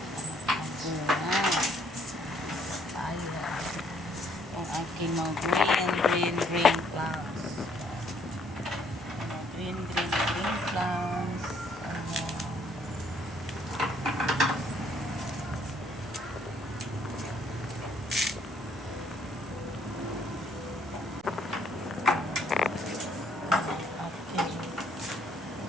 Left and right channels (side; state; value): both; normal; correlation 0.66